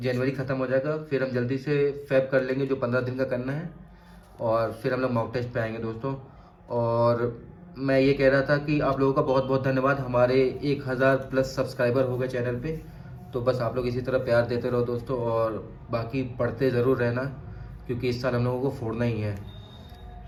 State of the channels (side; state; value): both; identical; correlation 1.00